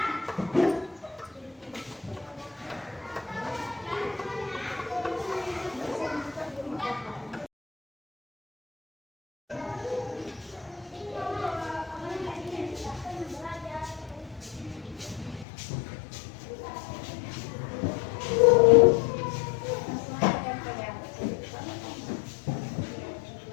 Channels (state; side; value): drops out; right; at 15.5 s